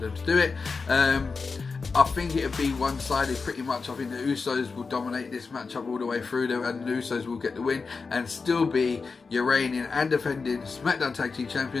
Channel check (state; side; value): quieter; right; 4.6 dB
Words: to do it. I think it'll be one-sided pretty much. I think the Usos will dominate this matchup all the way through there, and the Usos will get the win and still be your reigning and defending SmackDown Tag Team